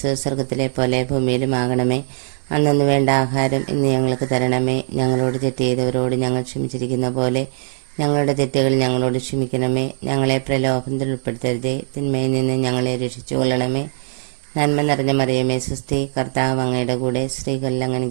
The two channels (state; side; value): silent; left; digital silence